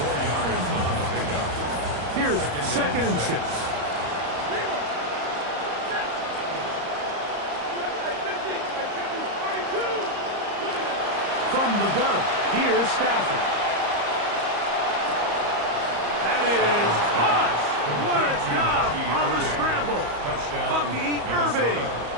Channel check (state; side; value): late; left; 34 ms